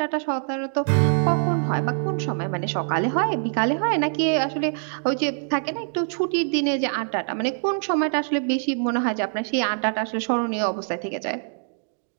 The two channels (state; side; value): silent; left; digital silence